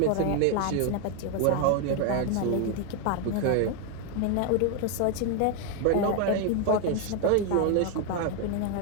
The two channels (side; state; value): both; different; correlation 0.01